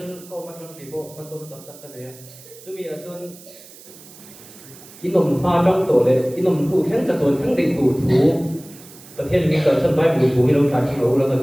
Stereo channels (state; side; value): noise; right; hiss, 20 dB below the sound